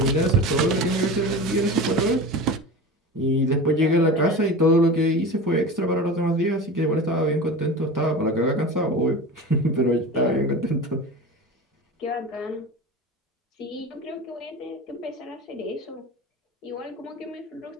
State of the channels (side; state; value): both; normal; correlation 0.31